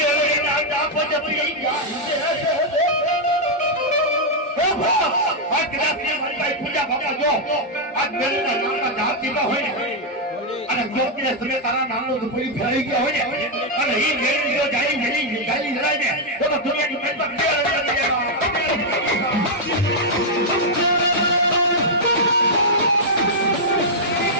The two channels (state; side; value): normal; both; correlation -0.04